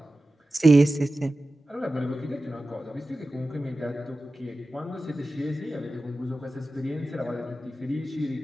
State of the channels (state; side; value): normal; both; correlation 0.95